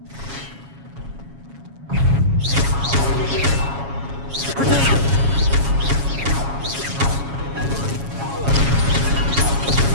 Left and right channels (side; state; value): left; late; 7.2 ms